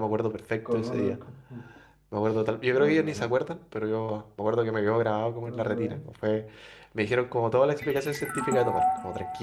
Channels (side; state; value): both; identical; correlation 1.00